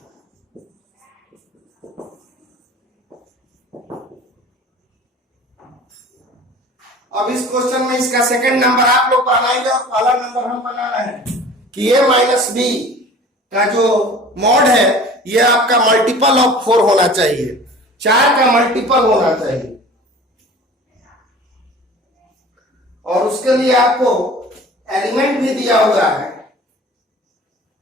अब इस क्वेश्चन में इसका सेकंड नंबर आप लोग बनाएंगे और पहला नंबर हम बना रहे हैं कि a माइनस बी का जो मॉड है ये आपका मल्टीपल ऑफ 4 होना चाहिए, 4 का मल्टीपल होना चाहिए। और उसके लिए आपको एलिमेंट भी दिया हुआ है।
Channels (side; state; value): both; normal; correlation 0.43